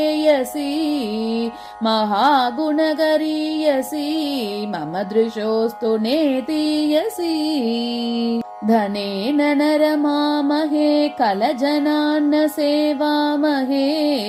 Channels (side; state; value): both; identical; correlation 1.00